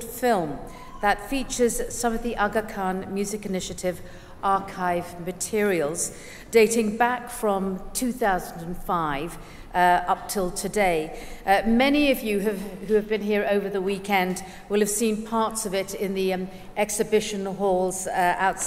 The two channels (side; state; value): both; identical; correlation 1.00